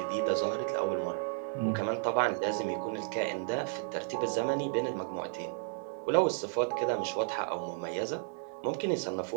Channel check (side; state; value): left; silent; 56 dB below the other